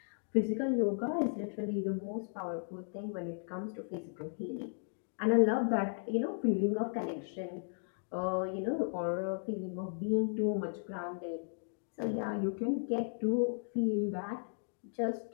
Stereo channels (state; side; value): silent; right; digital silence